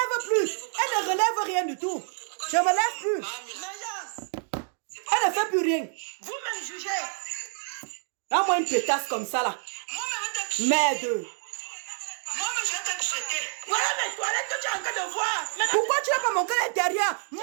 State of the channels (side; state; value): left; silent; 60 dB below the other